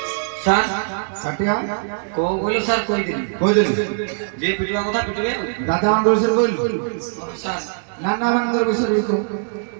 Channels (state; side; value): silent; left; digital silence